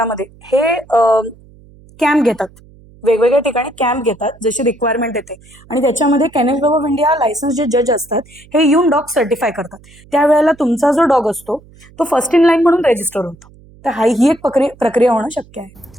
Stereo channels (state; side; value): noise; right; hum, 25 dB below the sound